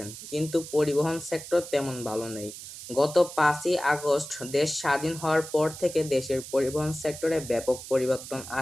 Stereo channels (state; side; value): noise; right; hiss, 12 dB below the sound